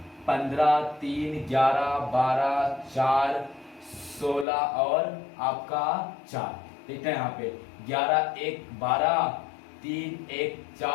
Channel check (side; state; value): right; drops out; at 4.5 s